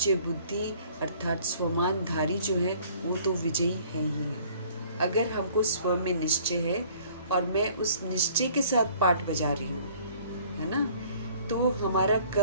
बुद्धि अर्थात स्वमानधारी जो है वो तो विजयी है ही है। अगर हमको स्व में निश्चय है और मैं उस निश्चय के साथ पाठ बजा रही हूँ, है ना, तो हमारा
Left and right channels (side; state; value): both; inverted; correlation -0.55